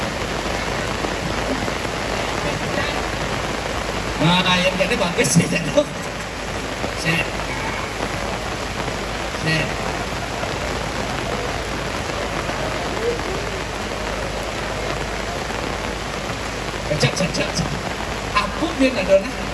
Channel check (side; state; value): both; identical; correlation 1.00